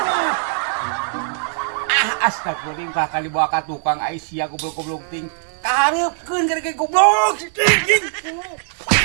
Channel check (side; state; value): left; silent; 61 dB below the other